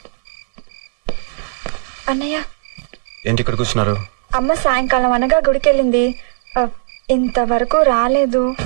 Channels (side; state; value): left; silent; 57 dB below the other